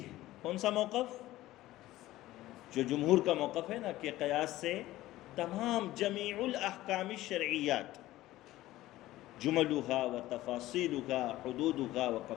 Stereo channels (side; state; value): right; quieter; 16.1 dB